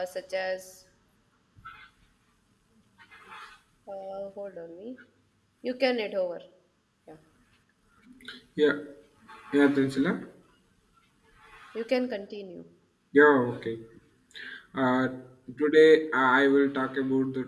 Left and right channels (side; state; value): both; identical; correlation 1.00